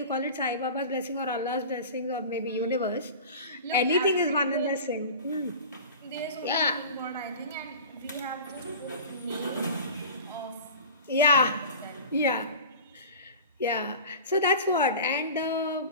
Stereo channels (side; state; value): both; inverted; correlation -0.37